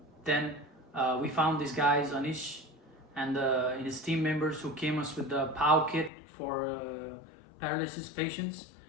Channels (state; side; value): drops out; right; at 6.1 s